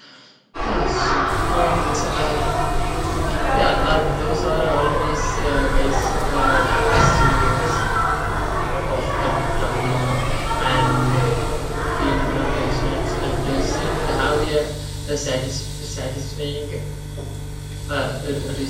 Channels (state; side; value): identical; both; correlation 1.00